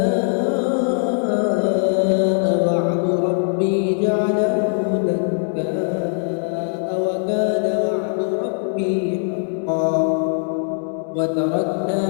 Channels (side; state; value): right; silent; digital silence